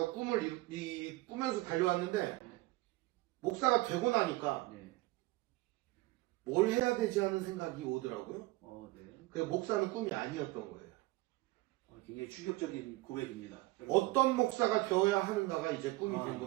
꿈을 꾸면서 달려왔는데, 목사가 되고 나니까 네. 뭘 해야 되지 하는 생각이 오더라고요. 네. 그 목사는 꿈이 아니었던 거예요. 굉장히 충격적인 고백입니다. 어떤 목사가 되어야 하는가가 이제 꿈이 된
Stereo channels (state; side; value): quieter; left; 19.9 dB